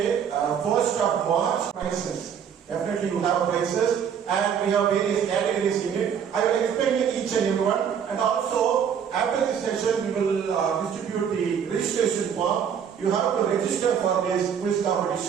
1st of March, prizes. Definitely you have prizes, and we have various categories in it. I will explain each and every one, and also after this session we will distribute the registration form. You have to register for this quiz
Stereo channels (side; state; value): left; quieter; 7.8 dB